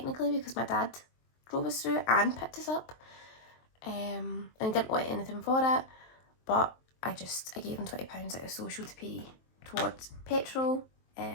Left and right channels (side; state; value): right; late; 23 ms